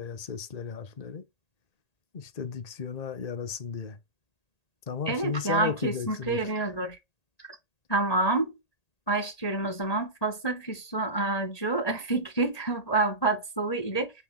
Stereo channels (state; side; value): late; right; 1.8 ms